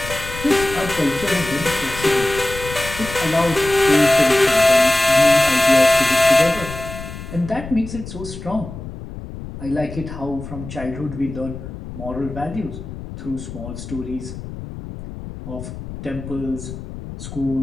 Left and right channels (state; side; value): noise; left; rumble, 11 dB below the sound